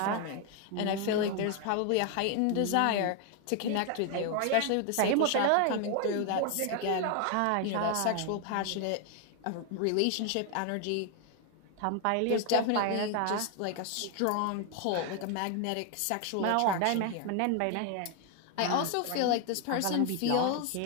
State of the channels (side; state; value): both; different; correlation 0.01